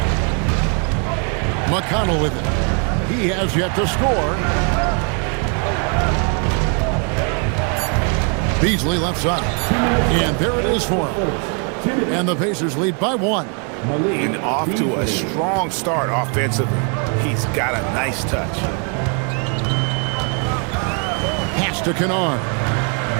McConnell with it. He has yet to score. Beasley left side. And there it is for him. And the Pacers lead by 1. And off to a strong start offensively. He's got a nice touch. Pass to Kennard.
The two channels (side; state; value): left; quieter; 39.4 dB